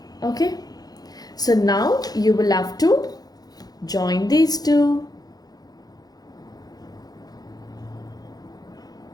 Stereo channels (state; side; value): late; right; 0.19 ms